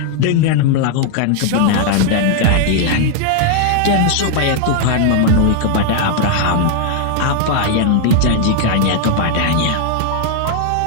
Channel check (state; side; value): different; both; correlation 0.00